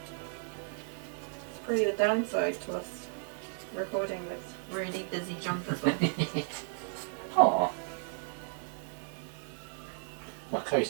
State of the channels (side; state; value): left; silent; 55 dB below the other